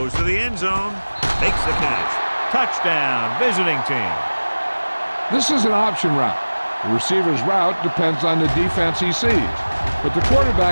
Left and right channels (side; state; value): both; inverted; correlation -1.00